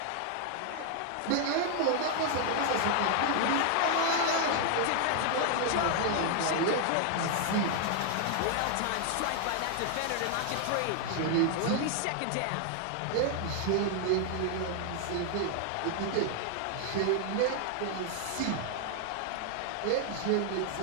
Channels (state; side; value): different; both; correlation 0.00